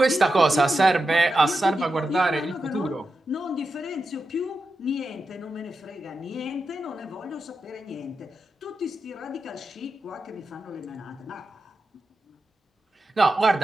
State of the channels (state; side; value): normal; both; correlation 0.89